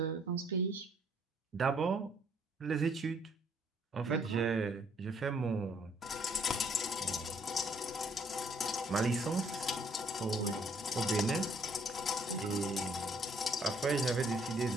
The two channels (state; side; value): normal; both; correlation 0.64